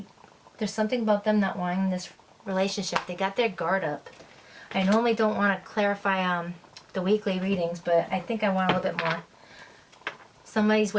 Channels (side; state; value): both; identical; correlation 1.00